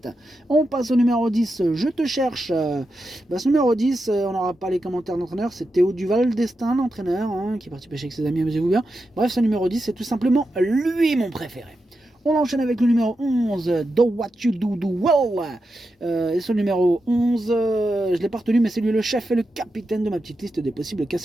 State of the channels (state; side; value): normal; both; correlation 0.88